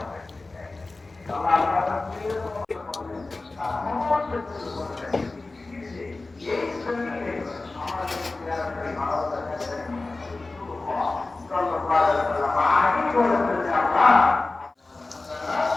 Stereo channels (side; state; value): right; quieter; 3.3 dB